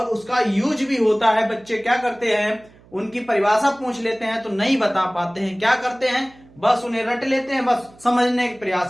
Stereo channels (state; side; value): noise; right; hum, 26 dB below the sound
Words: उसका यूज भी होता है। बच्चे क्या करते हैं, उनकी परिभाषा पूछ लेते हैं तो नहीं बता पाते हैं, क्या करते हैं, बस उन्हें रट लेते हैं, बस समझने का